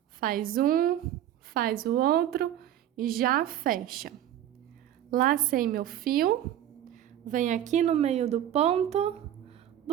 faz um, faz o outro e já fecha. Lacei meu fio, vem aqui no meio do ponto,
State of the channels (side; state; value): left; quieter; 11.5 dB